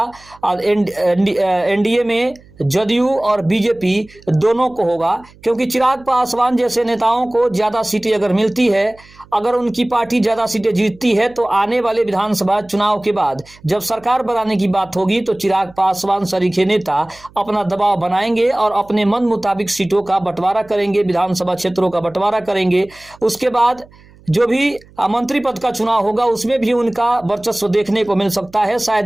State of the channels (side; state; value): right; noise; hum, 26 dB below the sound